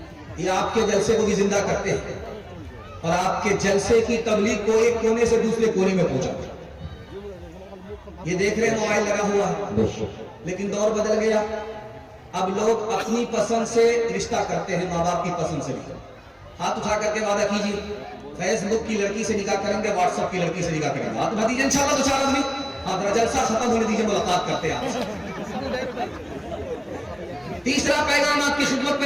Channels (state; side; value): identical; both; correlation 1.00